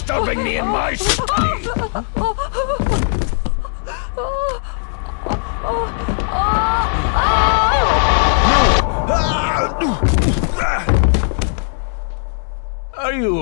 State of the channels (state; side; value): silent; right; digital silence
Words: me in my study? Are you